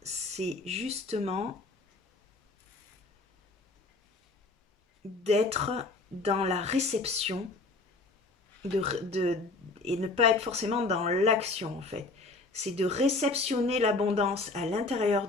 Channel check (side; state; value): right; quieter; 3.4 dB